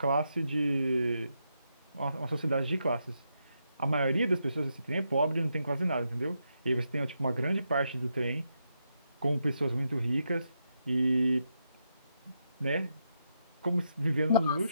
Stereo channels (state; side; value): inverted; both; correlation -0.82